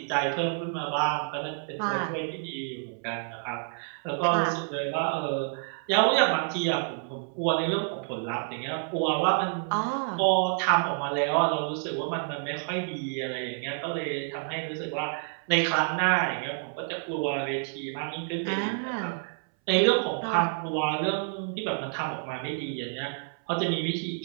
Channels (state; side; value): silent; left; 59 dB below the other